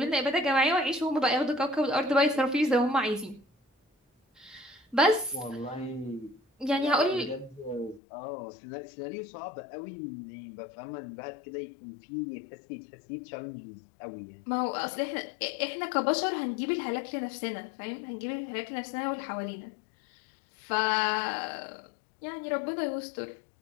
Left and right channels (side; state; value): right; drops out; at 8.0 s